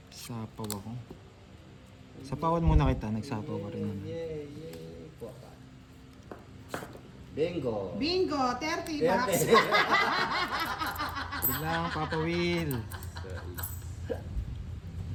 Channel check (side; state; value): both; identical; correlation 1.00